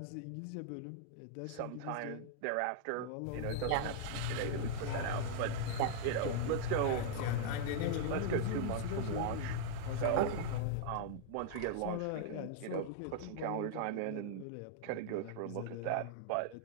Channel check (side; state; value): both; different; correlation -0.01